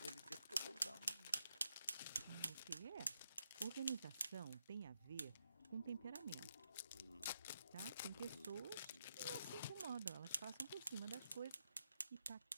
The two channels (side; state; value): both; inverted; correlation -0.82